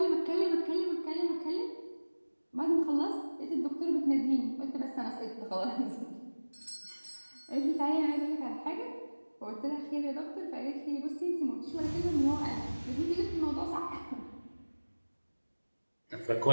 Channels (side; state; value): both; inverted; correlation -1.00